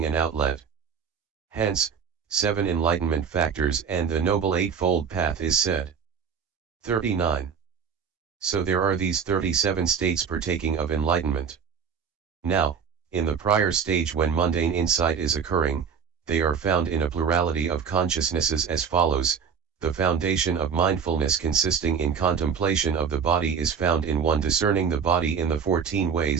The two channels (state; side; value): quieter; left; 6.7 dB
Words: an outlet. Hence, 7 enlightenment factors and the Noble Eightfold Path is said. 39. So there are these 37 states partaking of enlightenment. Now, in the prior stage when mundane insight is occurring, they are found in a plurality of consciousnesses as follows: the foundation of mindfulness consisting in contemplation of the body is found in one discerning the body in the 14